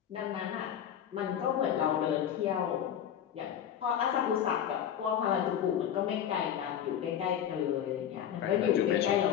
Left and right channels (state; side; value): quieter; right; 9.6 dB